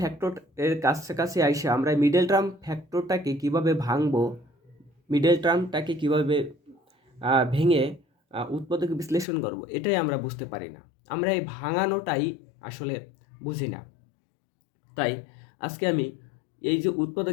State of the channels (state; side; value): drops out; right; at 9.2 s